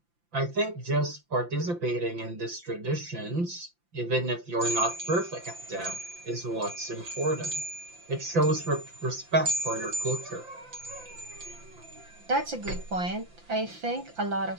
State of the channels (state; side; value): late; left; 5.8 ms